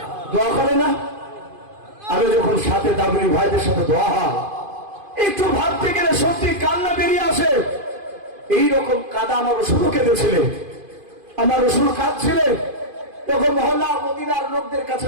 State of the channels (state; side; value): late; left; 2.5 ms